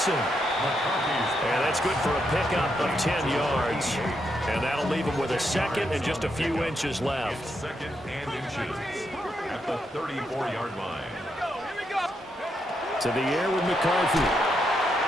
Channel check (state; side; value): normal; both; correlation 0.81